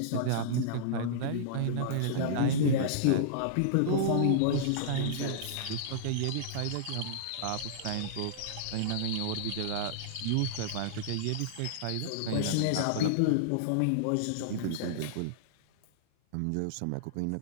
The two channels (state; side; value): different; both; correlation -0.02